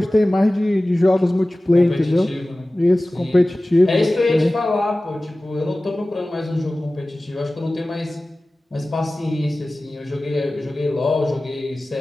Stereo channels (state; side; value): normal; both; correlation 0.97